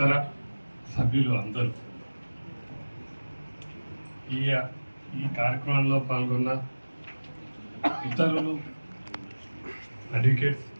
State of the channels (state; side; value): inverted; both; correlation -1.00